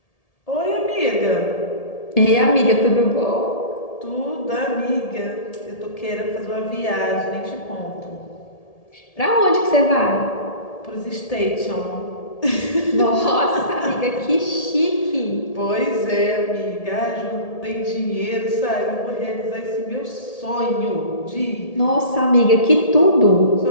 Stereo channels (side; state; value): right; late; 1.8 ms